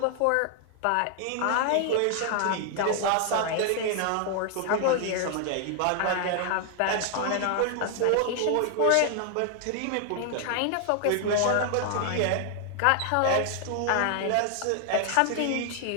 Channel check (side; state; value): both; different; correlation 0.00